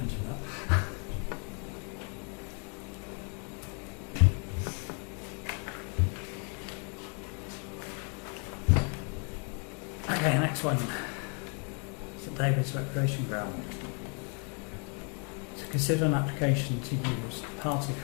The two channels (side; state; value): right; quieter; 38.3 dB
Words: that. Okay, next one. St David's Recreation Ground. To consider an application to use part of the